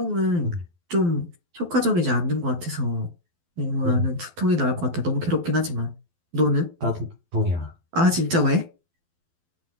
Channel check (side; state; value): left; late; 12 ms